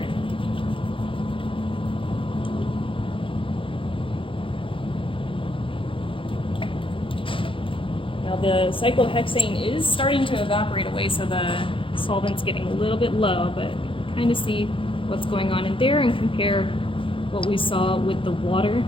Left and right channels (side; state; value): right; late; 0.25 ms